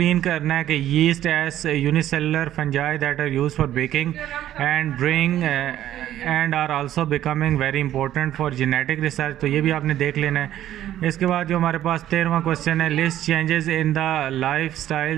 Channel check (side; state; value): left; quieter; 12.4 dB